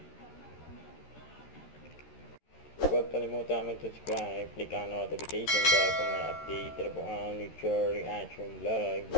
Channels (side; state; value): right; late; 13 ms